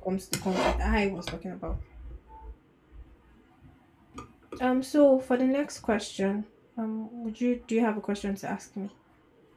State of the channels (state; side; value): identical; both; correlation 1.00